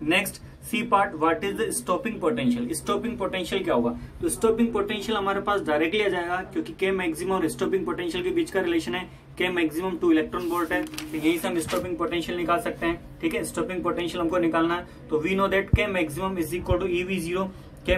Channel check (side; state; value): both; identical; correlation 1.00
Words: Next C part, what is the stopping potential. Stopping potential क्या होगा? तो स्टॉपिंग पोटेंशियल हमारे पास डायरेक्टली आ जाएगा, क्योंकि के मैक्सिमम और स्टॉपिंग पोटेंशियल के बीच का रिलेशन है के मैक्सिमम 2 इलेक्ट्रॉन वोल्ट है, तो यही से हम स्टॉपिंग पोटेंशियल निकाल सकते हैं। ठीक है, स्टॉपिंग पोटेंशियल हमको निकालना है, तो we know that K maximum is equal to EV0। K